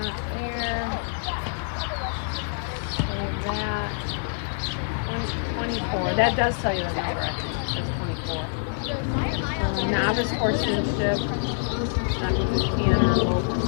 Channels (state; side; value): silent; right; digital silence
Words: That does tell you about it. Now this horse sensitive.